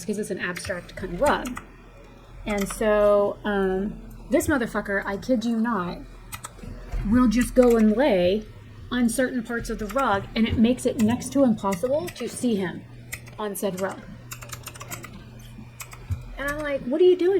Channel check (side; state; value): both; identical; correlation 1.00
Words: because it's an abstract kind of rug. And so this motherfucker, I kid you not, will just go and lay on certain parts of the rug, and it makes it next to impossible to see him on said rug. And I'm like, what are you